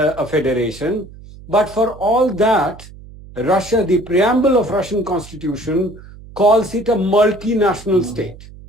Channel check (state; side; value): noise; right; hum, 18 dB below the sound